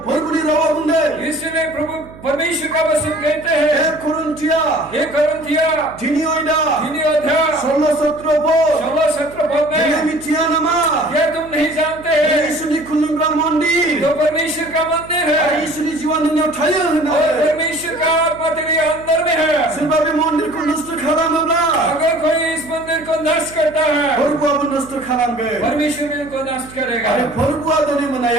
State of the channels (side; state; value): right; noise; hum, 19 dB below the sound